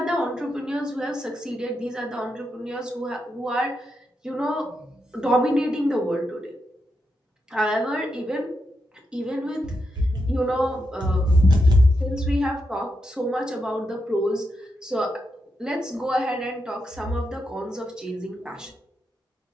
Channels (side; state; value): both; normal; correlation 0.85